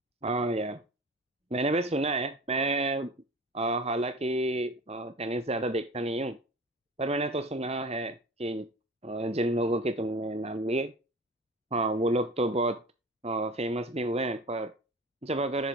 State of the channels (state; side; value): normal; both; correlation 0.37